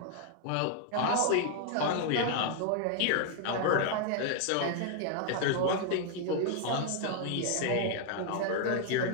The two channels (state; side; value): different; both; correlation 0.00